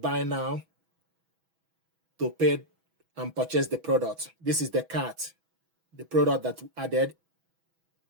buy now to pay and purchase the product. This is the cart, the product that we added.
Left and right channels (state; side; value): late; left; 6.1 ms